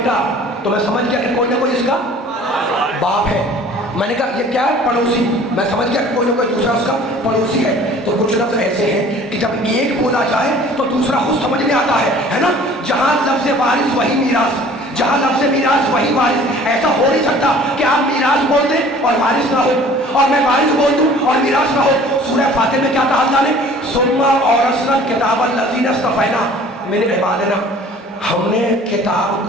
تو میں سمجھ گیا کہ کوئی نہ کوئی اس کا باپ ہے۔ میں نے کہا یہ کیا ہے؟ پڑوسی۔ میں سمجھ گیا کہ کوئی نہ کوئی دوسرا اس کا پڑوسی ہے۔ تو کچھ لفظ ایسے ہیں کہ جب ایک بولا جائے تو دوسرا خود سمجھ میں آتا ہے نا؟ جہاں لفظ وارث وہی میراث، جہاں لفظ میراث وہی وارث۔ ایسا ہو نہیں سکتا کہ آپ میراث بول دیں اور وارث نہ ہو، اور میں وارث بول دوں اور میراث نہ ہو۔ سورہ فاتر میں کیا کہا اللہ نے؟ ثم اورثنا الکتاب الذین اصطفینا من عبادنا، ہم نے کتاب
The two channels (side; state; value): both; normal; correlation 0.49